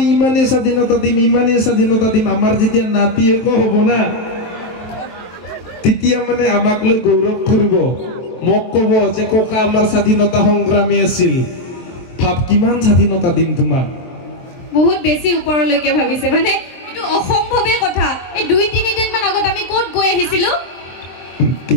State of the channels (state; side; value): late; right; 23 ms